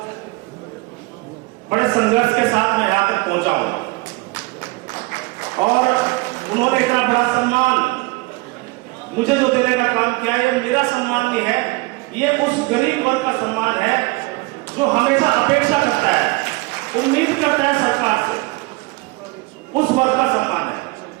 बड़े संघर्ष के साथ मैं यहां तक पहुंचा हूं और उन्होंने इतना बड़ा सम्मान मुझे जो देने का काम किया, ये मेरा सम्मान नहीं है, ये उस गरीब वर्ग का सम्मान है जो हमेशा अपेक्षा करता है, उम्मीद करता है सरकार से, उस वर्ग का सम्मान है।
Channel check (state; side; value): quieter; left; 23.8 dB